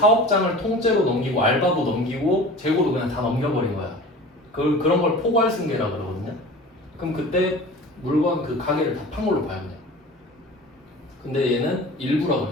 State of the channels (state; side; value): normal; both; correlation 0.38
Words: 통째로 넘기고 알바도 넘기고 재고도 그냥 다 넘겨버린 거야. 그런 걸 포괄 승계라 그러거든요. 그럼 그때 물건 그 가게를 다 판 걸로 봐야 돼. 근데 얘는 일부라